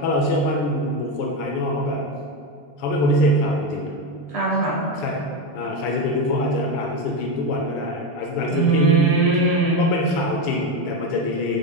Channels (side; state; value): right; late; 6.9 ms